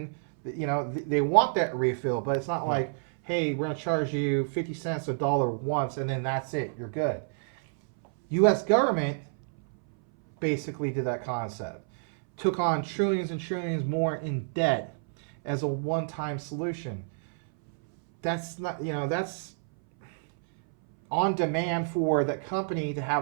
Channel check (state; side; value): silent; left; 59 dB below the other